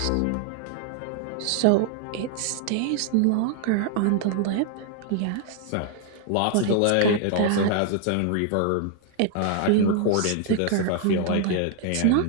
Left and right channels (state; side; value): different; both; correlation 0.00